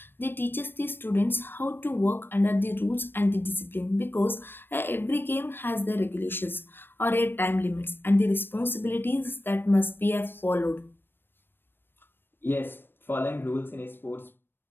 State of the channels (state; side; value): late; right; 0.099 ms